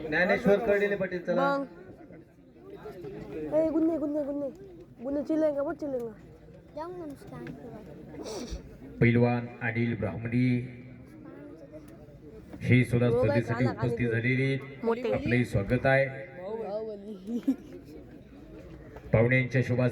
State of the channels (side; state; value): both; identical; correlation 1.00